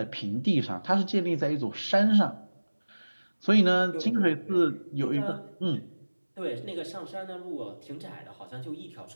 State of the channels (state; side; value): inverted; both; correlation -1.00